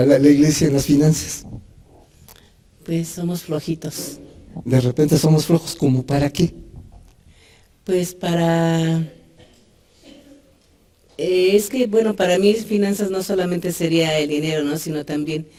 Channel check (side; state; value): both; identical; correlation 1.00